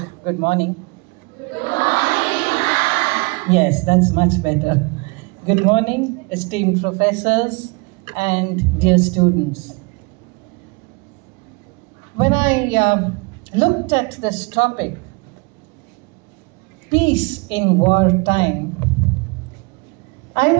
good morning. Good morning, ma'am. Yes, that's much better. Good morning, esteemed professors and dear students. When I looked at this topic, peace in wartime, I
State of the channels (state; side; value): quieter; left; 29.1 dB